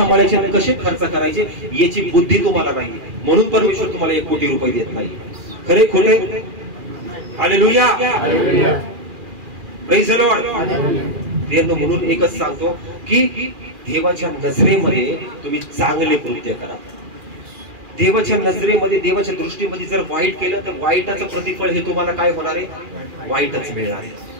आणि कसे खर्च करायचे याची बुद्धी तुम्हाला नाही, म्हणून परमेश्वर तुम्हाला 1 कोटी रुपये देत नाही. खरे खोटे? हालेलुया. Praise the Lord. म्हणून एकच सांगतो की देवाच्या नजरेमध्ये तुम्ही चांगले कृत्य करा. देवाच्या नजरेमध्ये, देवाच्या दृष्टीमध्ये जर वाईट केलं तर वाईटाचं प्रतिफळ हे तुम्हाला काय होणार आहे? वाईटच मिळणार आहे.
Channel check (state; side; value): late; left; 2.4 ms